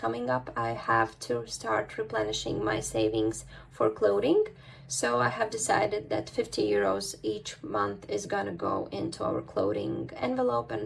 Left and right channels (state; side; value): identical; both; correlation 1.00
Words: up, I have to start replenishing my savings for clothing. So I have decided that 50 euros each month is gonna go into our clothing envelope,